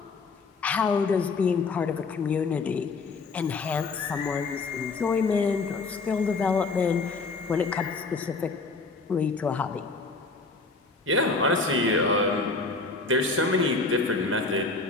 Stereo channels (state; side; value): quieter; right; 3.9 dB